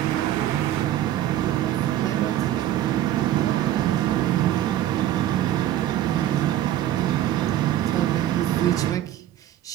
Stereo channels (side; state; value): left; quieter; 12.7 dB